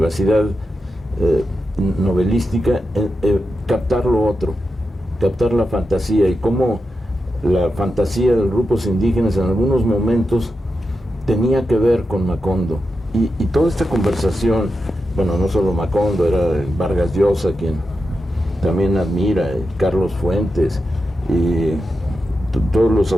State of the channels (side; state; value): both; normal; correlation 0.89